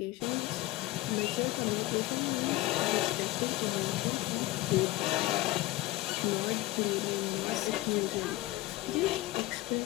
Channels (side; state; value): right; quieter; 18.3 dB